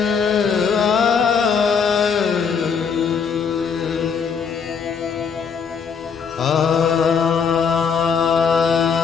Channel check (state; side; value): quieter; right; 6.3 dB